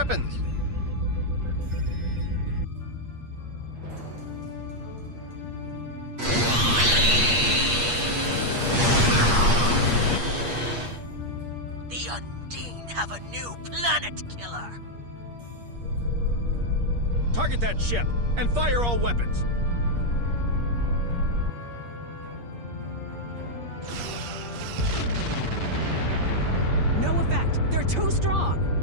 The Undine have a new planet killer! Target that ship, and fire all weapons! No effect! They're too strong!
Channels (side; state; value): left; late; 8.5 ms